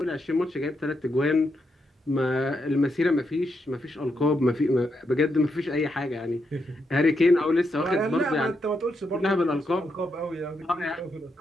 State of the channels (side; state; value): both; normal; correlation 0.82